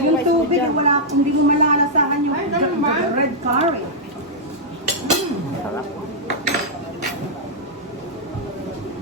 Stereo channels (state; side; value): normal; both; correlation -0.08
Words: yung rice mo tubig, dyan. hindi mo malalasahan yung Ay, ganun ba? the red curry. Sarap.